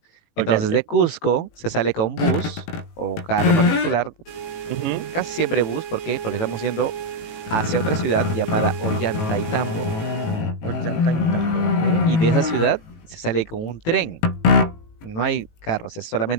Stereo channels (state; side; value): late; right; 18 ms